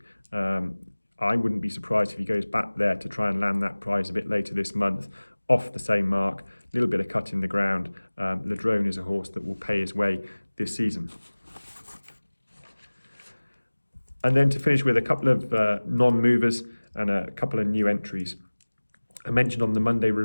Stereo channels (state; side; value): inverted; both; correlation -1.00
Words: I wouldn't be surprised if he goes back there to try and land that prize a bit later this month, off the same mark, a little bit of cut in the ground. Ladronne is a horse that will pay his way this season. And then to finish with a couple of non-movers and a couple of new entries. I mentioned on the Monday